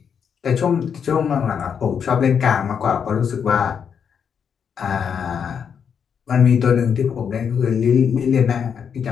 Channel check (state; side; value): quieter; right; 7.2 dB